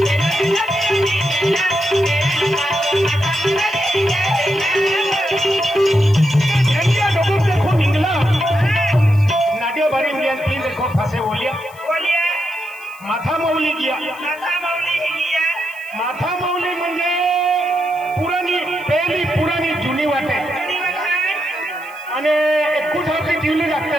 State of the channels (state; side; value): noise; right; hiss, 25 dB below the sound